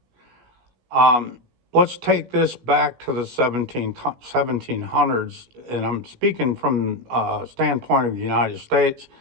Let's take this back to the 1700s, and I'm speaking from a standpoint of the United States.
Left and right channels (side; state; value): left; late; 17 ms